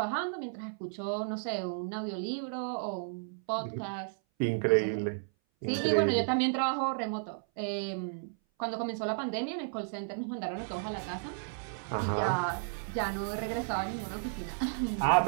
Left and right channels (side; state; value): left; silent; 56 dB below the other